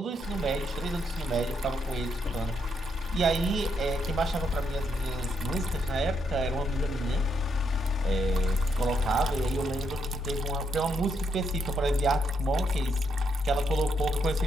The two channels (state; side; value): normal; both; correlation 0.77